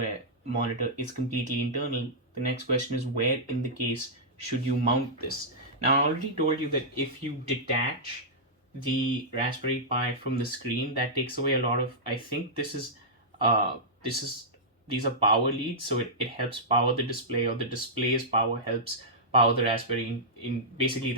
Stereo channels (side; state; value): both; normal; correlation -0.11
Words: monitor is completely internal, the next question is where in the case should you mount this? Now, I already told you that if you detach the Raspberry Pi from the screen, that takes away a lot of, I think these are power leads, so it helps power the display, or the display's power helps power the Raspberry in basically